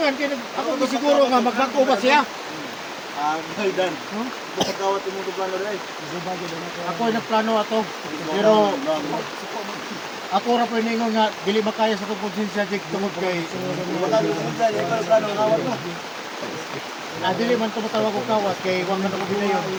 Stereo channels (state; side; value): identical; both; correlation 1.00